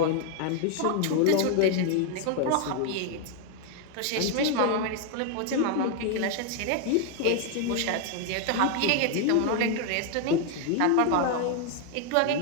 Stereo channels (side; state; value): both; different; correlation 0.01